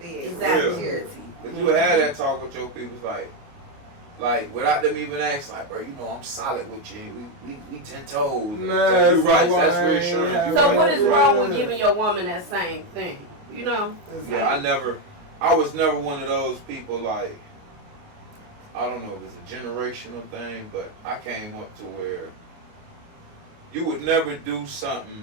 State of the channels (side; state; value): left; late; 29 ms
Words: is. Exactly. Security. Cause you had that talk with your people, like without them even asking, like, bro, you know I'm solid with you. We 10 toes. Nah, so you so right. why That's I ain't reassurance. have- You're So right. what is wrong with Yeah. giving your woman that same thing? You know? Yeah, I was never one of those people like, I don't know if it's a generational thing, but I came up to where you would never do